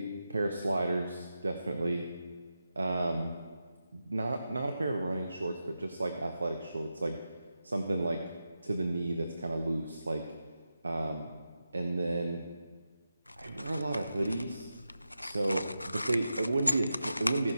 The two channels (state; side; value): inverted; both; correlation -0.90